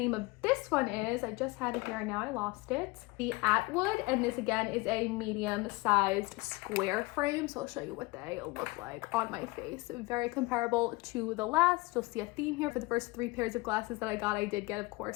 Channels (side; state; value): right; quieter; 23.5 dB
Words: of this one is, I just had it here and now I lost it, the Atwood. And this again is a medium-sized square frame. So I'll show you what they look like on my face. Very comparable to the last. You'll see a theme here. For the first 3 pairs of glasses that I got, I did get, of